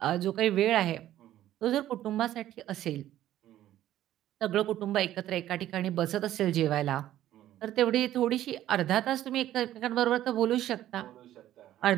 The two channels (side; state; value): left; quieter; 13.0 dB